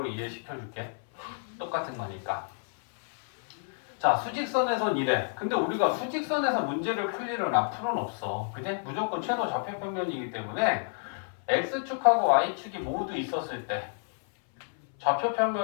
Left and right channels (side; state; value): right; silent; 58 dB below the other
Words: 이해시켜 줄게. 똑같은 거니까. 자, 수직선에선 이래. 근데 우리가 수직선에서 문제를 풀 일은 앞으로는 없어. 그지? 무조건 최소 좌표평면이기 때문에 X축하고 Y축이 모두 있었을 때